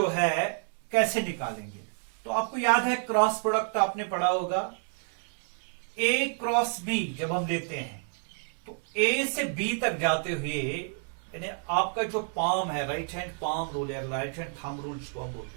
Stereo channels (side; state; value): left; silent; 55 dB below the other